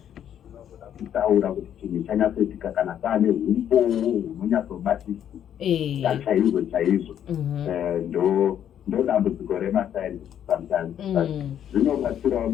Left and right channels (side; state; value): right; quieter; 9.9 dB